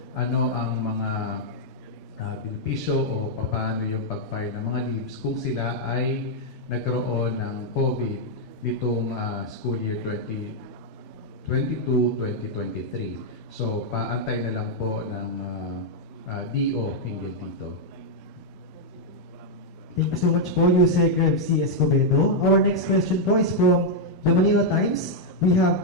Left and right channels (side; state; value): both; normal; correlation -0.03